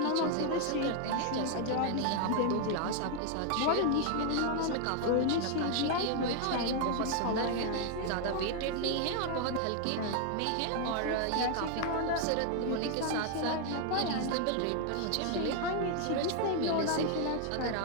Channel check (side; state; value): both; different; correlation 0.00